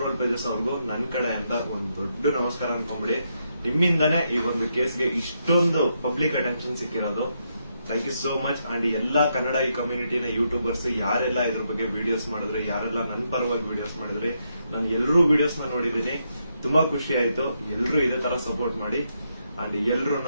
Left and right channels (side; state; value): both; inverted; correlation -0.80